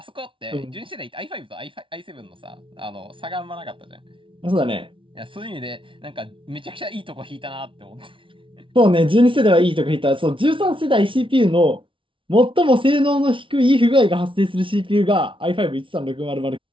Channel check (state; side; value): late; left; 0.25 ms